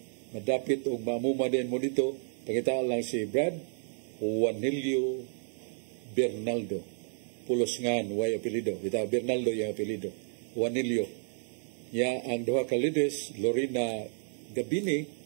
madapit o mamuma din mo dito pakitaan lang si Brad Juanilio Bernaldo pulos ngan way apelido bitaw Bernaldo yung apelido Juanilio ya ang duha ka leaders Lorena Gabini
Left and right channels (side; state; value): left; silent; digital silence